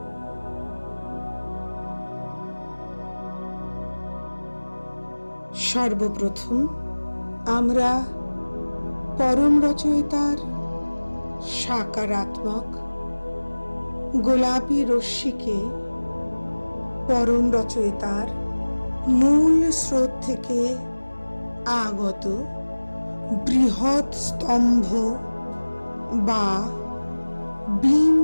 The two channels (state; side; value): inverted; both; correlation -1.00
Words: সর্বপ্রথম আমরা পরম রচয়িতার সাকারাত্মক গোলাপি রশ্মিকে পরম রচয়িতার মূল স্রোত থেকে আগত বৃহৎ স্তম্ভ বা বিম